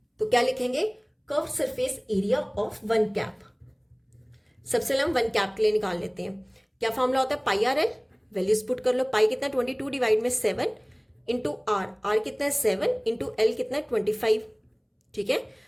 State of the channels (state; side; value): identical; both; correlation 1.00